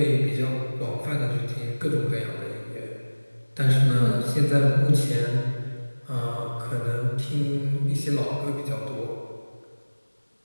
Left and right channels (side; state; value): both; inverted; correlation -1.00